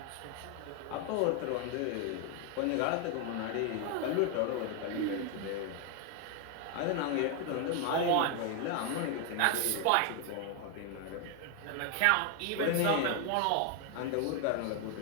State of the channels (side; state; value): both; different; correlation 0.00